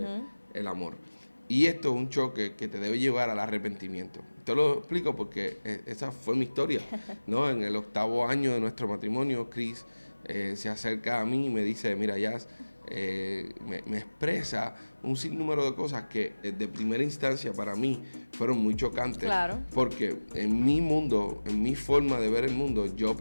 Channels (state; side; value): inverted; both; correlation -1.00